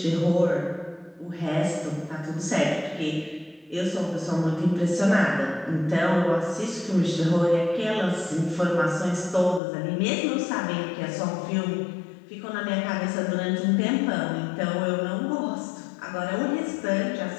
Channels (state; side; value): drops out; right; at 9.6 s